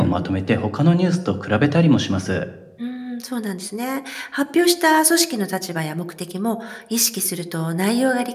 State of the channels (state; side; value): identical; both; correlation 1.00